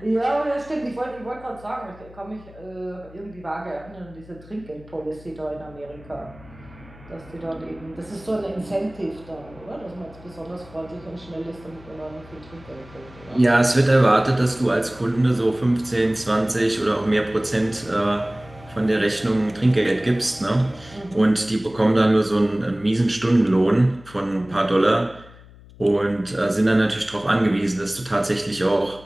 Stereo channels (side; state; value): left; noise; hum, 21 dB below the sound